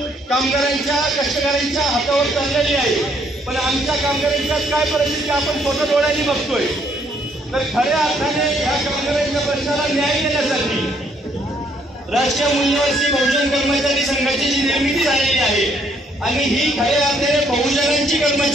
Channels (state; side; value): normal; both; correlation 0.68